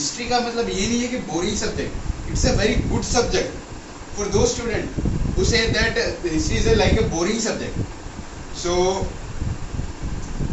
का मतलब ये नहीं है कि boring subject, it's a very good subject for those student who say that history is like a boring subject. So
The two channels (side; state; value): both; identical; correlation 1.00